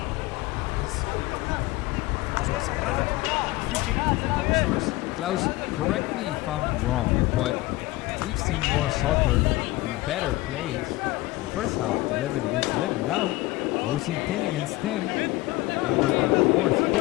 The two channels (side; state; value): right; quieter; 19.4 dB